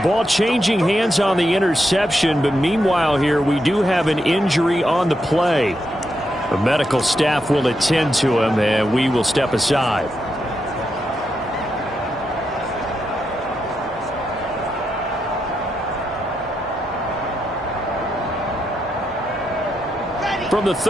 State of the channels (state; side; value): normal; both; correlation 0.83